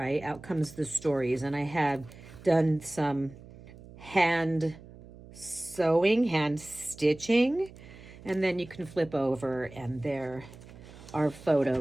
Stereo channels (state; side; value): noise; right; hum, 19 dB below the sound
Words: Out comes the stories. And I have done some hand sewing, hand stitching, and then you can flip over and there are